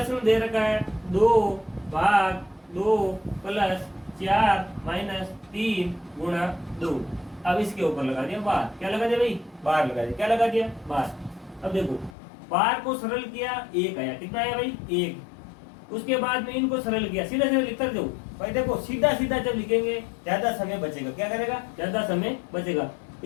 दे रखा है 2 भाग 2 प्लस 4 माइनस 3 गुणा 2। अब इसके ऊपर लगा दिया बार। क्या लगा दिया भाई? बार लगा दिया। क्या लगा दिया? बार। अब देखो बार को सरल किया, 1 आया। कितना आया भाई? 1। उसके बाद में इनको सरल किया, सीधा सीधा लिखकर दो भाई। देखो सीधा सीधा जब लिखेंगे ज्यादा समय बचेगा। क्या करेगा? ज्यादा समय बचेगा।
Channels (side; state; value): right; drops out; at 12.2 s